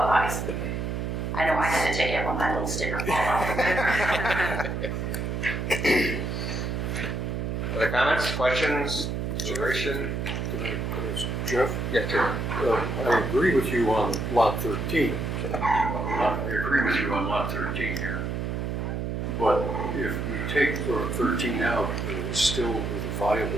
obviously. I know I had to take it when my little sticker fell off. Other comments, questions, consideration? Jeff? Yeah, sure. I agree with you on Lot 13. I agree with you on Lot 13 here. But if we take 13 out, it's still with a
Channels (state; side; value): noise; right; hum, 2 dB below the sound